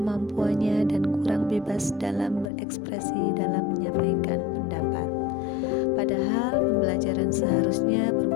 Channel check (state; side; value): drops out; right; at 2.5 s